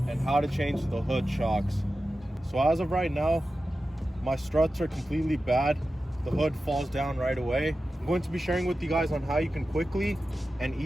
and how to change the hood shocks. So as of right now, my struts are completely bad. The hood falls down right away. I'm going to be sharing with you guys on how you can quickly and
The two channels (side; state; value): both; normal; correlation 0.93